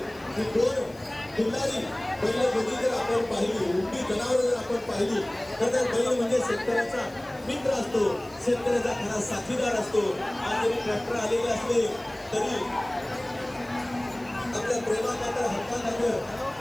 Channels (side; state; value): left; noise; hiss, 27 dB below the sound